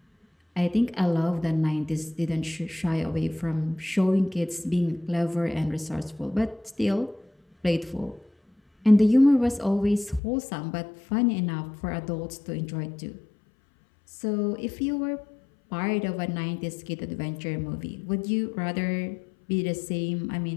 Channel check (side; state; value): right; drops out; at 10.2 s